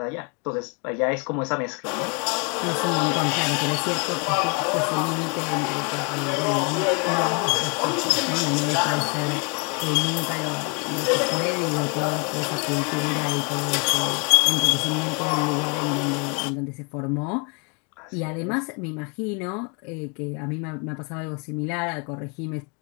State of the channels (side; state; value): right; quieter; 34.8 dB